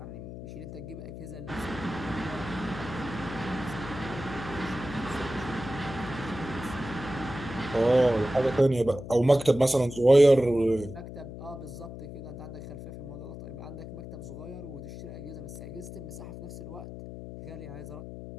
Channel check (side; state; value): left; noise; hum, 11 dB below the sound